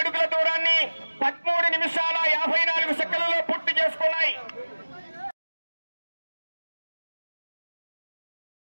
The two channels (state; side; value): inverted; both; correlation -1.00